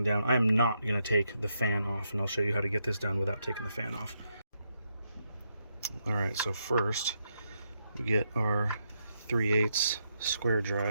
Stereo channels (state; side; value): inverted; both; correlation -0.81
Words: down. I am not gonna take the fan off, and I'll show you how to get this done without taking the fan off. All right, so first we get our 3/8 square